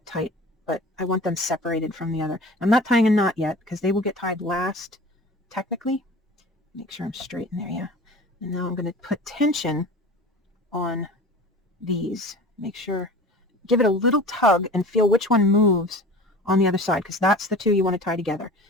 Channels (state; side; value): normal; both; correlation 0.39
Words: tight, but I want them separated from the other. I'm not tying a knot yet, because they will get tied last, technically. Make sure I'm straight in there, yeah. And now I'm going to put tension on these. Make sure, give it a little tug and feel which one moves on the other side, because that's the two you want to tie together.